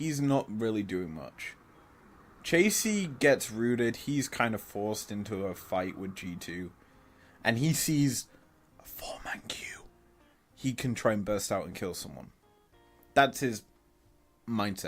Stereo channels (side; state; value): both; identical; correlation 1.00